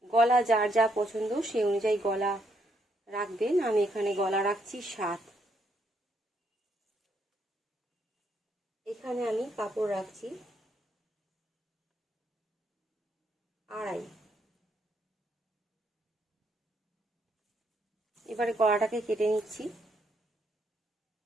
গলা যার যা পছন্দ সেই অনুযায়ী গলা রাখবেন। আমি এখানে গলা রাখছি 7। এখানে আমি কাপড় রাখছি 2.5। এবারে গলাটাকে কেটে নিচ্ছি।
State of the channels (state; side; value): normal; both; correlation 0.74